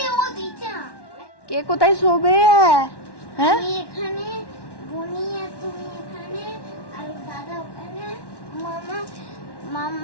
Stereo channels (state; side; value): late; right; 1.1 ms